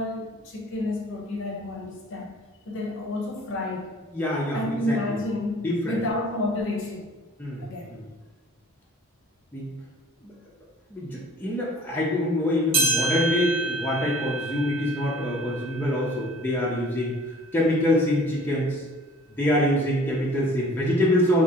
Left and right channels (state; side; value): normal; both; correlation 0.50